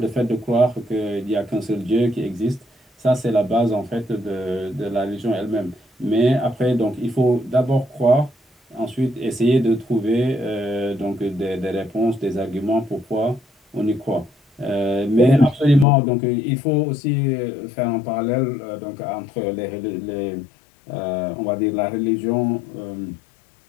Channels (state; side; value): drops out; right; at 15.9 s